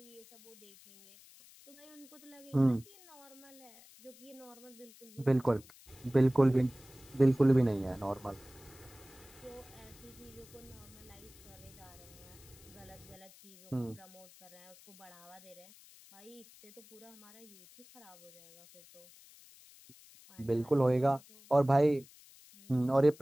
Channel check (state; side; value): noise; left; hiss, 22 dB below the sound